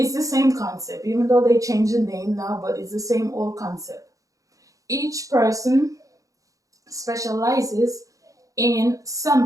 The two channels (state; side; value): late; left; 0.16 ms